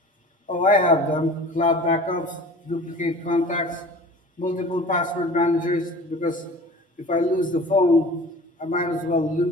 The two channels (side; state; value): both; normal; correlation 0.41